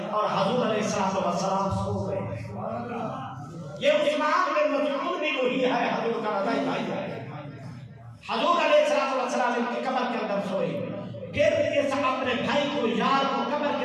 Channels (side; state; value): both; identical; correlation 1.00